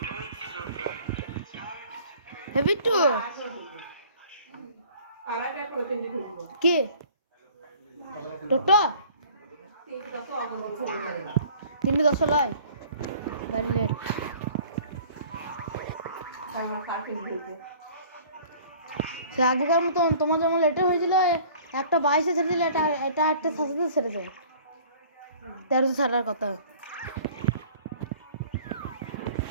হে বিট্টু কি টোটো 3:10 লয় গাড়ি লেট। সে আগেকার মতন তোমার যেমন লেটে হয়েছিল 1:22 ছেড়ে দিলে এটা 8:07 ছেড়েছে। 13 ছাড়ার কথা।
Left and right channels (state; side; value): inverted; both; correlation -0.50